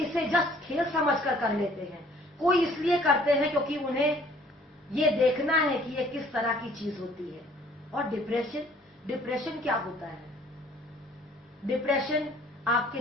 जस्ट खेल समझकर कर लेते हैं, कोई इसलिए करते हैं क्योंकि उन्हें ये देखना है कि ये किस तरह की चीज होती है। और डिप्रेशन क्या होता है? डिप्रेशन आपके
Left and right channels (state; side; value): normal; both; correlation 0.57